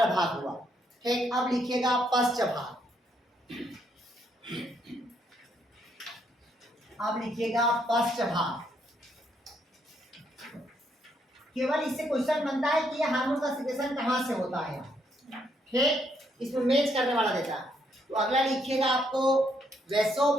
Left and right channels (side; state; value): both; normal; correlation 0.73